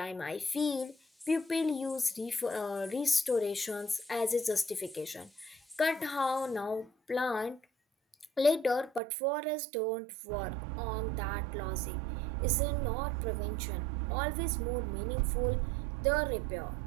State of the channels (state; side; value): drops out; left; at 9.0 s